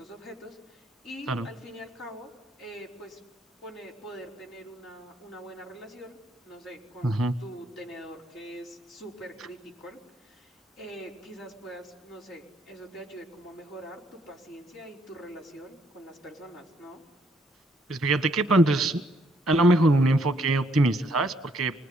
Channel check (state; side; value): normal; both; correlation 0.69